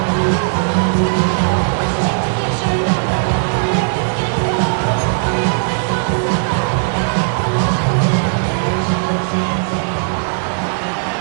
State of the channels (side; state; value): left; silent; digital silence